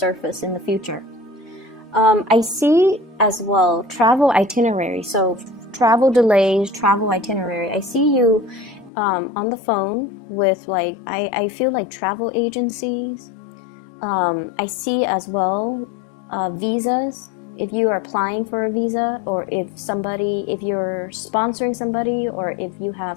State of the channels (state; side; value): drops out; right; at 8.9 s